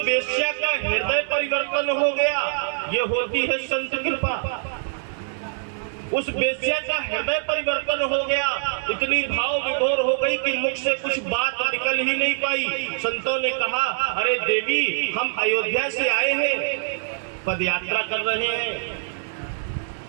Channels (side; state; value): left; silent; digital silence